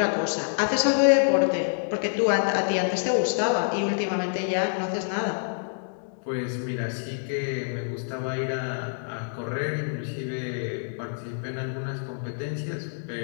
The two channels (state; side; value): silent; right; digital silence